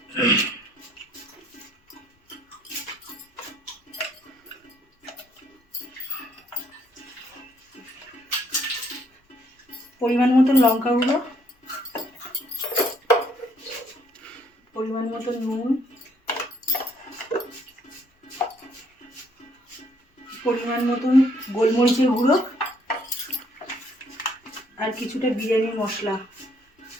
পরিমাণ মতন লঙ্কা গুঁড়ো, পরিমাণ মতন নুন, পরিমাণ মতন গোলমরিচের গুঁড়ো আর কিছুটা বিরিয়ানি মশলা।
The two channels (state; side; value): normal; both; correlation 0.67